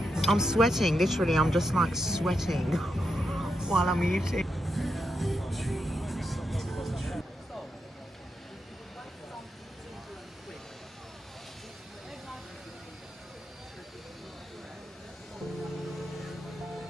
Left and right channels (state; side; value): normal; both; correlation 0.85